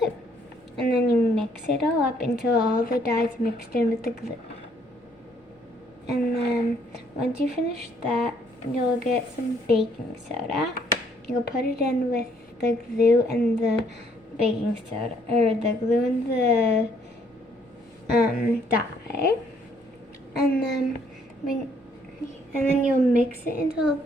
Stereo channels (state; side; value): normal; both; correlation 0.66